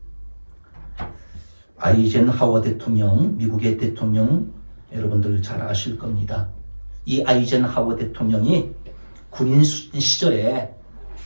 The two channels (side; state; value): both; inverted; correlation -1.00